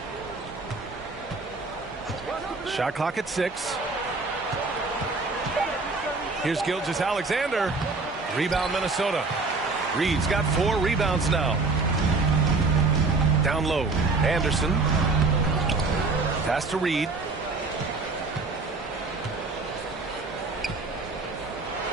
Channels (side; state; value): left; quieter; 3.8 dB